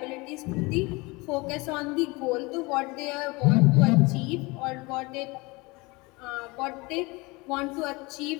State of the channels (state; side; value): quieter; right; 24.8 dB